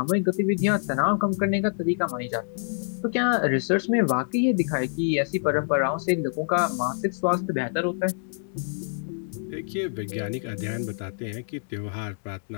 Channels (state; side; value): silent; right; digital silence